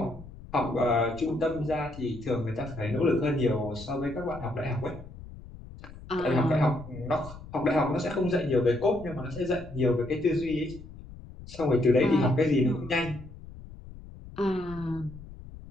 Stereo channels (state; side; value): noise; left; rumble, 16 dB below the sound